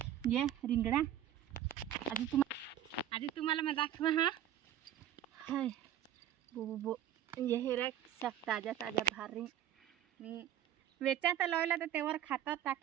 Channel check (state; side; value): quieter; left; 11.1 dB